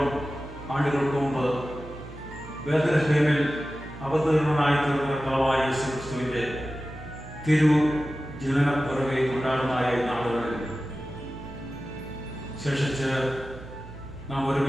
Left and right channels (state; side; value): noise; right; hum, 15 dB below the sound